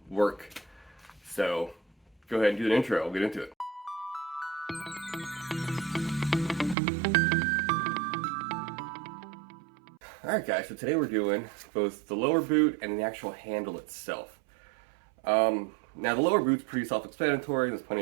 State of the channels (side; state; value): left; drops out; at 6.8 s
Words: work. So go ahead and do an intro, we'll get into it. Alright guys, so today we're doing both the lower boot and the actual handle itself. Now the lower boot's pretty self-explanatory. There's plenty